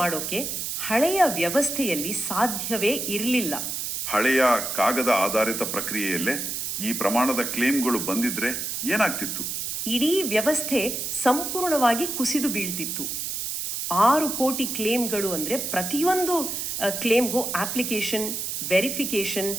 ಹಳೆಯ ವ್ಯವಸ್ಥೆಯಲ್ಲಿ ಸಾಧ್ಯವೇ ಇರಲಿಲ್ಲ. ಹಳೆಯ ಕಾಗದ ಆಧಾರಿತ ಪ್ರಕ್ರಿಯೆಯಲ್ಲೇ ಈ ಪ್ರಮಾಣದ ಕ್ಲೇಮ್ಗಳು ಬಂದಿದ್ರೆ ಏನಾಗ್ತಿತ್ತು? ಇಡೀ ವ್ಯವಸ್ಥೆ ಸಂಪೂರ್ಣವಾಗಿ ಕುಸಿದು ಬೀಳ್ತಿತ್ತು. 6 ಕೋಟಿ ಕ್ಲೇಮ್ಗಳು ಅಂದರೆ ಪ್ರತಿಯೊಂದು ಕ್ಲೇಮ್ಗೂ application, verification,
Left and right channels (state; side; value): noise; right; hiss, 3 dB below the sound